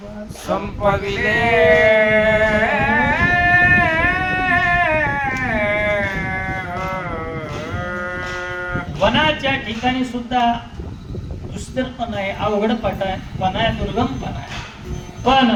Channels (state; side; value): identical; both; correlation 1.00